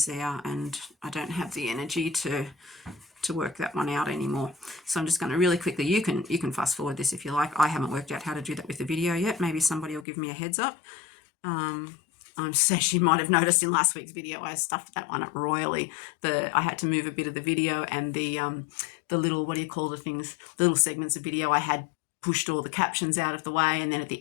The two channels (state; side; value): drops out; right; at 10.1 s